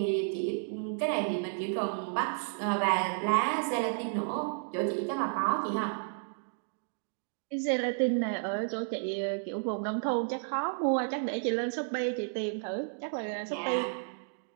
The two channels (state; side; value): silent; left; digital silence